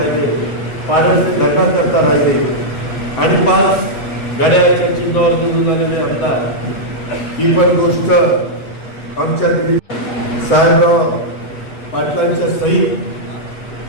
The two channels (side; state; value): right; late; 7.8 ms